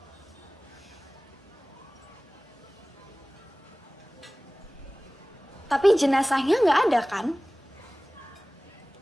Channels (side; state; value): both; normal; correlation 0.98